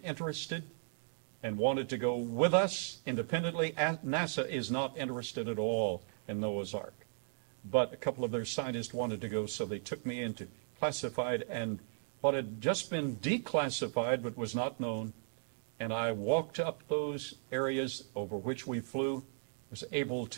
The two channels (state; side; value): silent; left; digital silence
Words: and wanted to go with us independently. NASA is not interested at all in Noah's Ark. But a couple of their scientists wanted to go, so they took me into classified, and what had just been declassified but was not known, and I walked up those areas over which we flew, was able